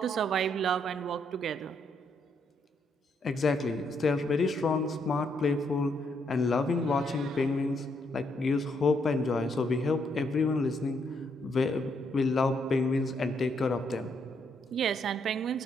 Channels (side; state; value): both; normal; correlation 0.75